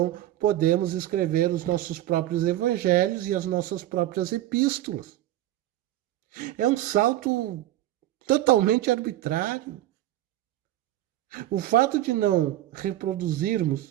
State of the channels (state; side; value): quieter; left; 14.1 dB